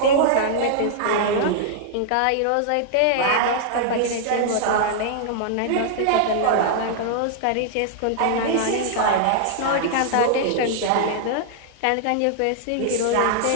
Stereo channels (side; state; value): both; different; correlation -0.01